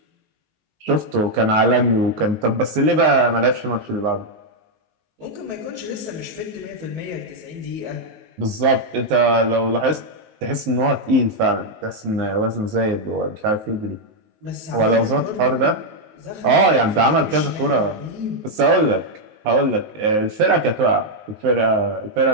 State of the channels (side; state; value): left; late; 19 ms